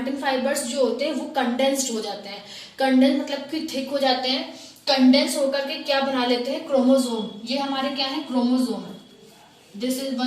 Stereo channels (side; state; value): both; identical; correlation 1.00